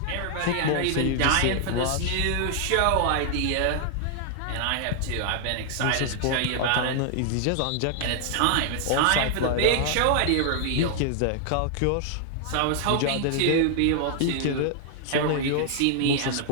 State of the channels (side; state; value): both; different; correlation 0.00